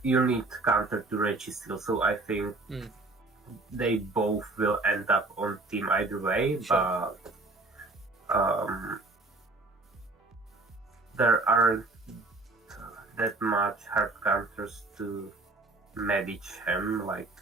you need counter to Registeel, so I think they both will end up on team either way, but there aren't that much hard counters to Medicham like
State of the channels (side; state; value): left; quieter; 3.3 dB